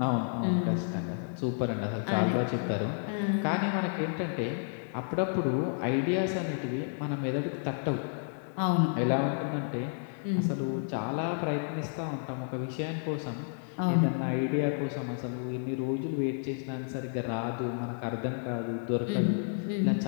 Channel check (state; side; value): silent; right; digital silence